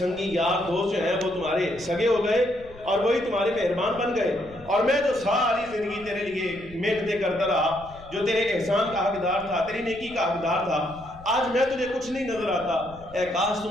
یار دوست جو ہیں وہ تمہارے سگے ہو گئے اور وہی تمہارے مہربان بن گئے. اور میں جو ساری زندگی تیرے لیے محنتیں کرتا رہا، جو تیرے احسان کا حقدار تھا، تیری نیکی کا حقدار تھا، آج میں تجھے کچھ نہیں نظر آتا. اے کاش تو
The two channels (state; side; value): noise; left; rumble, 20 dB below the sound